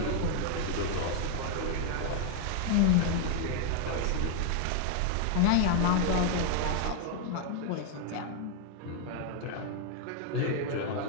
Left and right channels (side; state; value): both; different; correlation 0.00